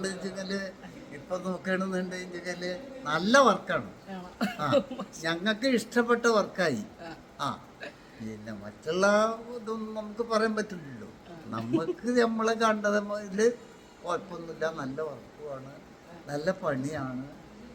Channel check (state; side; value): identical; both; correlation 1.00